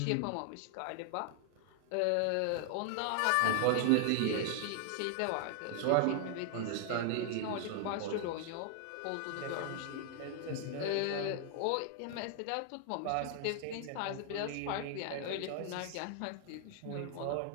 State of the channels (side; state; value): both; different; correlation 0.00